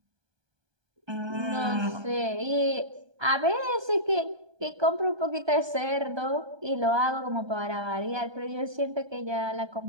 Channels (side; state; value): left; late; 1.2 ms